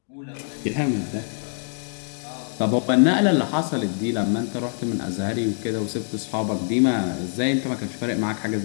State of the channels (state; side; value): silent; right; 62 dB below the other